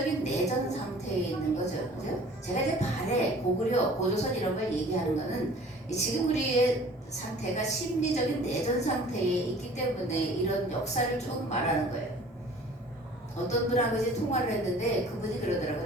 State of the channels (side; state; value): both; normal; correlation 0.48